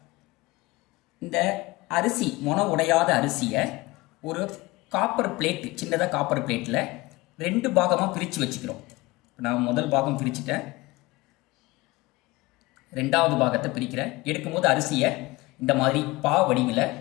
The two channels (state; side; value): quieter; right; 21.5 dB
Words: இந்த அரிசி, மொன உடையாத அரிசியை ஒரு காப்பர் பிளேட், சின்னதாக காப்பர் பிளேட்டில் 2 பாகமாக பிரித்து வச்சுக்கிறோம். நான் முதல் பாகம் பிரிச்சுட்டேன், 2வது பாகத்தை பிரிக்கிறேன். எடுக்கும்போது அரிசியை இந்த மாதிரி பா வடிவில்